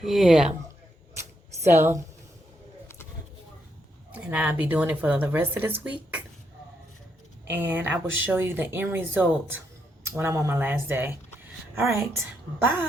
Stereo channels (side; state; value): both; normal; correlation 0.78